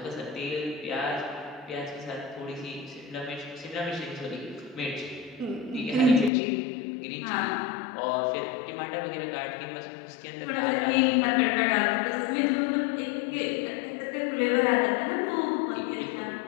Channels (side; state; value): right; drops out; at 6.3 s